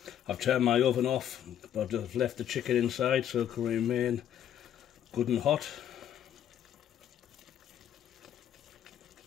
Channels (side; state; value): right; quieter; 10.2 dB